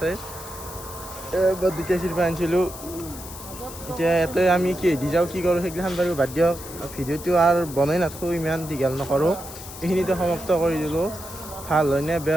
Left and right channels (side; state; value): left; noise; hiss, 13 dB below the sound